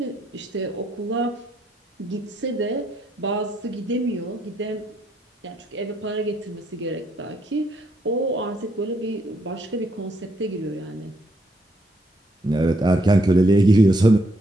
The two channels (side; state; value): both; normal; correlation 0.73